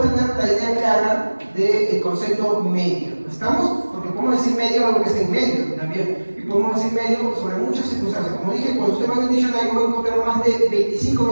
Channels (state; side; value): inverted; both; correlation -1.00